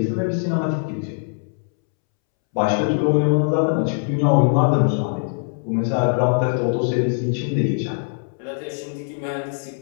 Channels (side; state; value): right; silent; 65 dB below the other